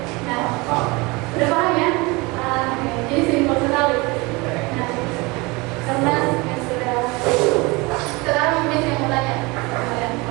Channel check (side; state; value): left; quieter; 25.1 dB